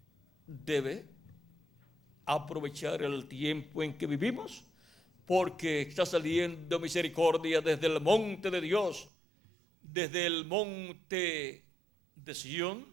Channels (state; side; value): drops out; left; at 9.1 s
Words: debe aprovechar el tiempo en que vivimos, porque está saliendo misericordia desde el monte de Dios, desde el monte de Sión